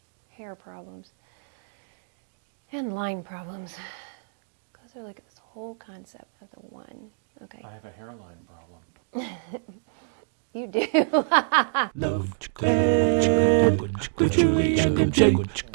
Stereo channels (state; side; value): silent; left; digital silence